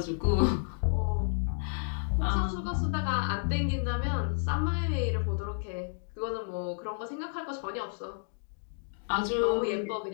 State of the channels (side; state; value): right; silent; digital silence